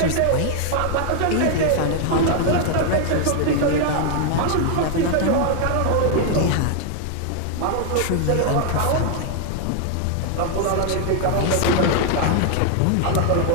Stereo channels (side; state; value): both; different; correlation 0.00